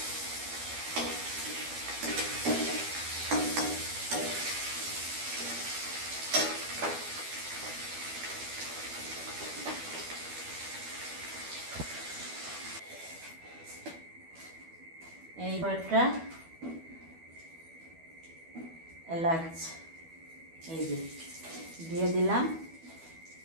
এই কয়েকটা এলাচ এই যে দিয়ে দিলাম,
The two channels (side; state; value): left; late; 12 ms